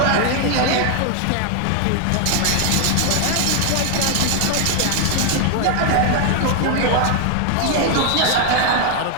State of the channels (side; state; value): both; different; correlation 0.00